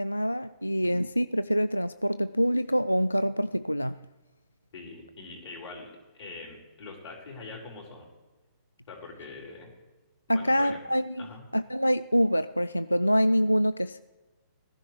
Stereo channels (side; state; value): both; inverted; correlation -0.98